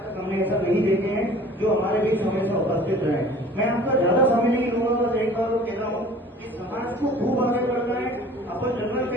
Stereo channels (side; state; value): both; normal; correlation 0.47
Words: तक हमने ऐसा नहीं देखे हैं जो हमारे बीच हमेशा उपस्थित रहे। मैं आपका ज्यादा समय नहीं लूंगा, बस एक बार कह रहा हूँ कि समाज को खूब आगे बढ़ना है। अपन जनरल